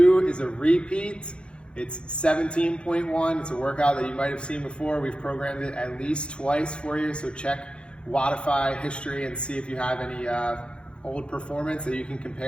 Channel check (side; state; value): right; late; 0.056 ms